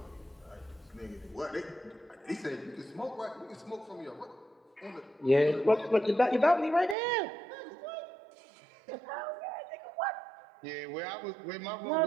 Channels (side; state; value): left; drops out; at 7.0 s